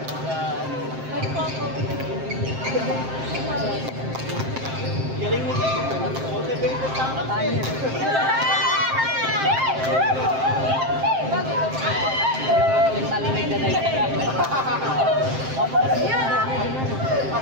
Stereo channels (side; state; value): left; late; 7.6 ms